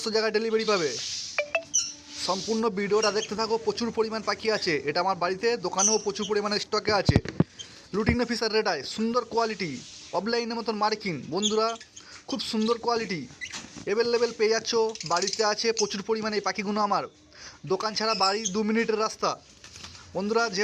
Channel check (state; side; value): identical; both; correlation 1.00